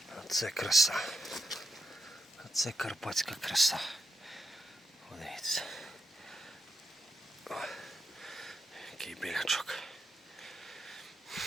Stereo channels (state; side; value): normal; both; correlation 0.84